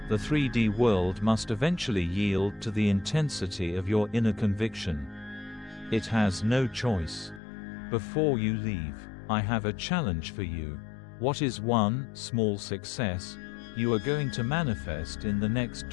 The 3D world must eventually yield to the intensity of your inner conviction. It has no choice. Before you leave, I have a challenge for you. What is one small success you are going to manifest in the next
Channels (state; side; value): drops out; right; at 7.4 s